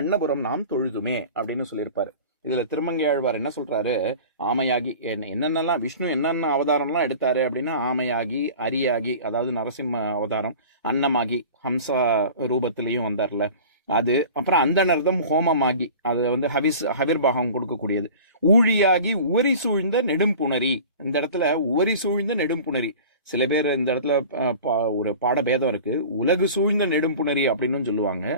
நாம் தொழுதுமே அப்படின்னு சொல்லியிருப்பாரு. இதுல திருமங்கை ஆழ்வார் என்ன சொல்றாரு? ஆமையாகி என்னென்னலாம் விஷ்ணு என்னென்ன அவதாரம்லாம் எடுத்தாரு அப்படின்னா ஆமையாகி, அரியாகி அதாவது நரசிம்ம அவதாரம், அன்னமாகி ஹம்சா ரூபத்திலையும் வந்தார்ல அது, அப்புறம் அந்தனர்தம் ஹோமமாகி அது வந்து ஹவிர்பாகம் கொடுக்கக்கூடியது, ஊழியாகி உவரி சூழ்ந்த நெடும்புணரி. இந்த இடத்துல உவரி சூழ்ந்த நெடும்புணரி, சில பேர் இந்த இடத்துல ஒரு பாடபேதம் இருக்கு. உலகு சூழ்ந்த நெடும்புணரி அப்படின்னு சொல்லுவாங்க.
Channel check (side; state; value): both; inverted; correlation -0.40